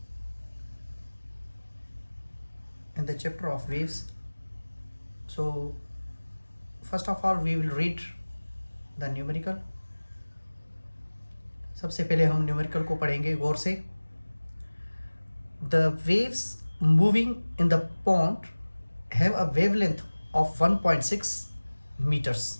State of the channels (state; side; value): inverted; both; correlation -1.00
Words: in the chapter of waves. So first of all we will read the numerical. सबसे पहले हम numerical को पढ़ेंगे गौर से। The waves moving in the pond have a wavelength of 1.6 meters.